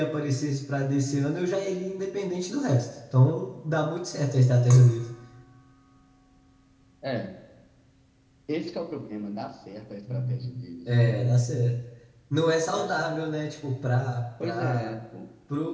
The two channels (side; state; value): both; identical; correlation 1.00